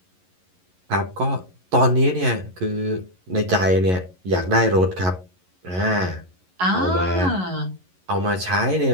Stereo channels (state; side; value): late; left; 11 ms